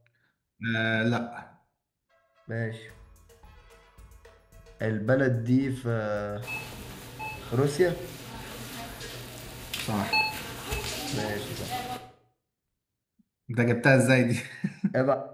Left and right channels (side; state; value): both; identical; correlation 1.00